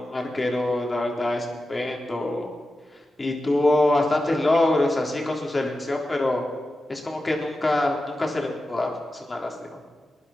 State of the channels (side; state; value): both; normal; correlation 0.92